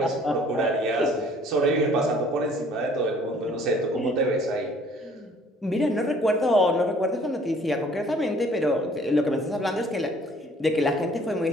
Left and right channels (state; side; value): normal; both; correlation 0.56